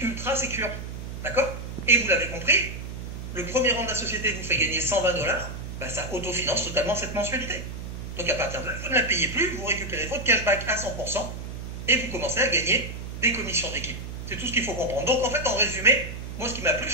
sécure. D'accord? Et vous l'avez compris, le premier rang de la société vous fait gagner 120 $, ça autofinance totalement cette mensualité. Donc à partir de là, vous ne la payez plus, vous récupérez votre cashback à 100% et vous commencez à gagner des commissions d'équipe. C'est tout ce qu'il faut comprendre. Donc en fait, en résumé, moi ce qui m'a plu,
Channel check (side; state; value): right; noise; hum, 8 dB below the sound